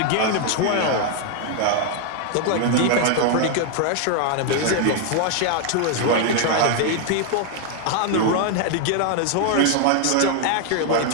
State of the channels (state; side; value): different; both; correlation 0.00